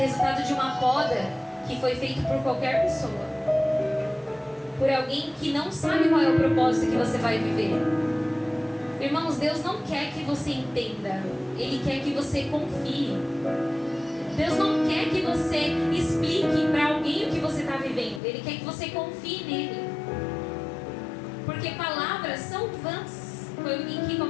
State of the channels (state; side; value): drops out; right; at 18.2 s